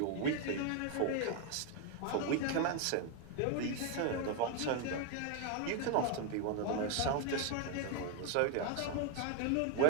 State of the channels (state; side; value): different; both; correlation 0.01